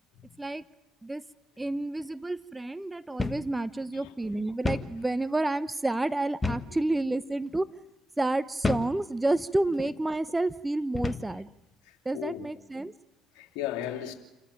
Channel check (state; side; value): normal; both; correlation 0.93